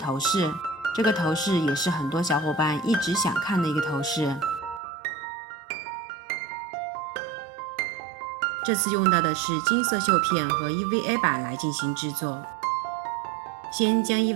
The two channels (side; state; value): left; drops out; at 4.8 s